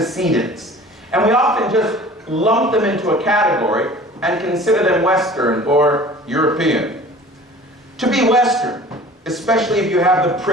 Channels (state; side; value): normal; both; correlation 0.44